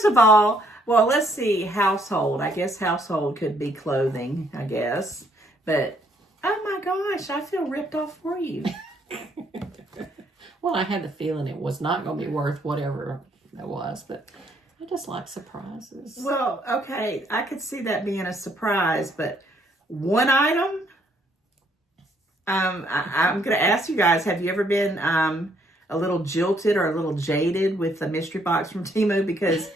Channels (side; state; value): both; normal; correlation 0.69